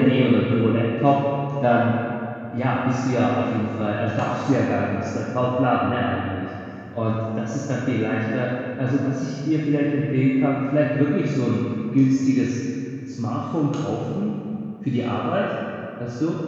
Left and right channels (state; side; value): identical; both; correlation 1.00